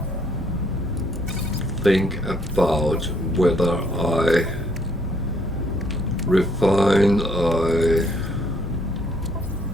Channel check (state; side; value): normal; both; correlation 0.66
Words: think about whether I refine,